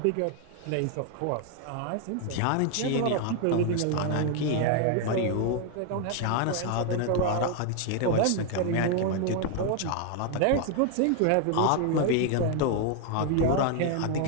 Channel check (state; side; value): different; both; correlation 0.01